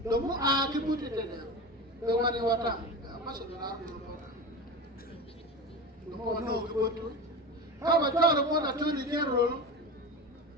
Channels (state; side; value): normal; both; correlation 0.27